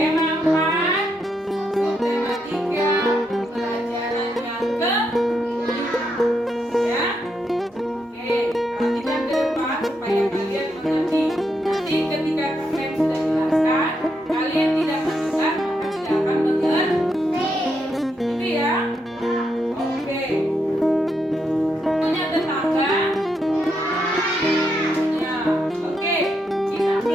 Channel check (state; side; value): normal; both; correlation 0.81